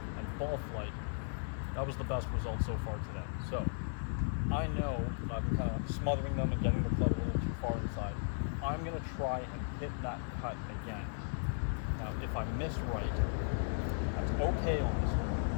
and ball flight, that was the best result so far today. So I know that I've been kind of smothering them and getting the club a little too far inside. I'm gonna try and hit that cut again. Now if I miss right, that's okay on this hole.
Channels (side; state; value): right; silent; 54 dB below the other